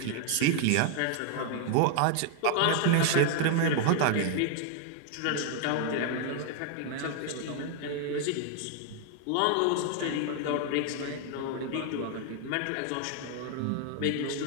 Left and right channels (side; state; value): both; different; correlation 0.00